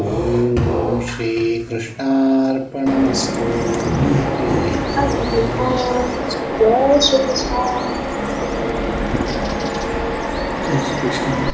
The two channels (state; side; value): identical; both; correlation 1.00